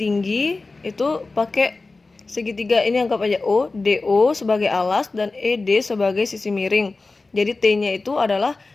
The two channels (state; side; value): quieter; right; 3.6 dB